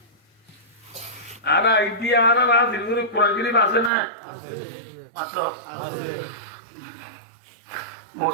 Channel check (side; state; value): left; drops out; at 3.9 s